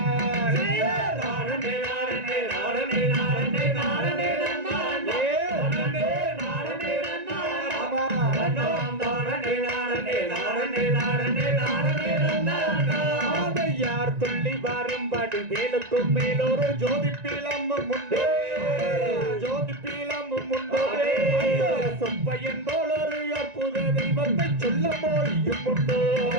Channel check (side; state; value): left; late; 1.9 ms